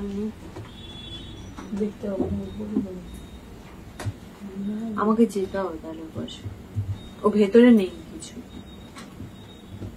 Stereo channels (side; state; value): both; identical; correlation 1.00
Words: আমাকে যেতে হবে তাহলে বসে, ও ভেতরে নেই কিছু।